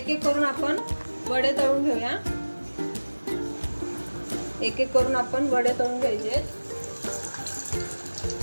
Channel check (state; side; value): inverted; both; correlation -1.00